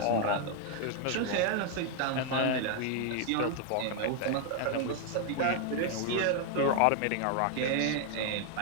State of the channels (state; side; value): different; both; correlation 0.00